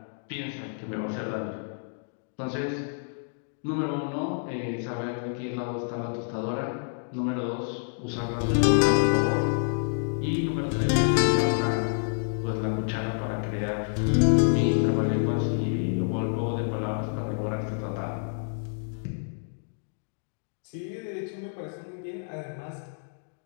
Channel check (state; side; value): silent; right; digital silence